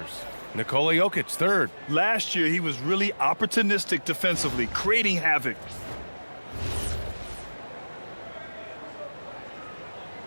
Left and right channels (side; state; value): both; inverted; correlation -1.00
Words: Nikola Jokic, 3rd. Last year, he was really opportunistic defensively, creating havoc.